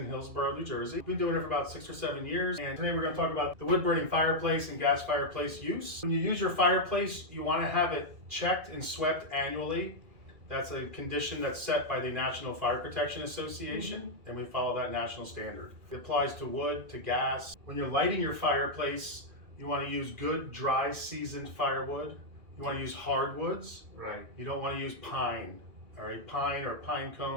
Hillsborough, New Jersey. We've been doing it for about 6 or 7 years, and today we're going to talk about the wood burning fireplace and gas fireplace use. When you use your fireplace, you want to have it checked and swept annually. That's a condition that's set by the National Fire Protection Association, and we follow that national standard. It applies to wood, to gas. When you're lighting your fireplace, you want to use good, dry, seasoned firewood. You want to use hardwoods. Right. You don't want to use pine. All right, pine or pine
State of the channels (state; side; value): late; left; 2.1 ms